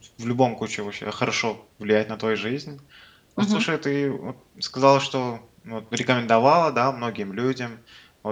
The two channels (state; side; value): identical; both; correlation 1.00